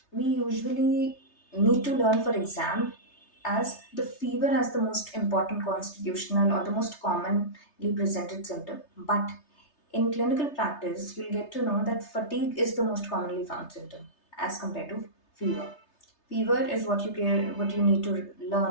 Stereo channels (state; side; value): late; right; 3.3 ms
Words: we usually need to learn for exam as the fever as the most important constitutional or the most commonly presented symptom, but in clinical practice you'll get to know that fatigue is the most commonly found symptom as compared to fever. Fever is what you need to